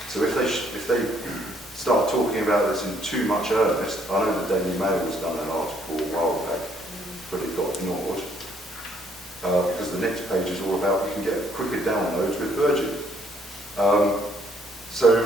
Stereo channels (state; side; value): normal; both; correlation 0.66